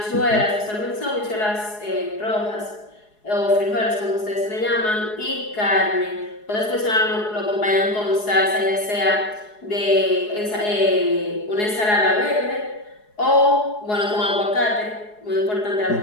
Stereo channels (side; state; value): right; late; 4.8 ms